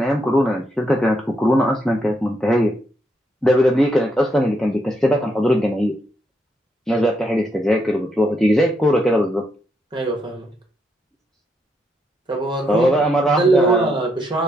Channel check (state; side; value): normal; both; correlation 0.78